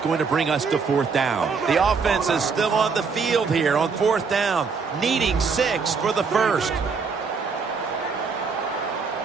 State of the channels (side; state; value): left; quieter; 5.2 dB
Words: to bring us to 4th down. The offense is still on the field here on 4th down, needing 6 for the first.